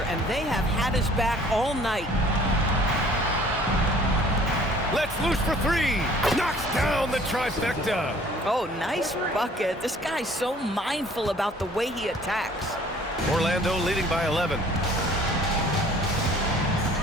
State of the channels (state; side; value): normal; both; correlation 0.53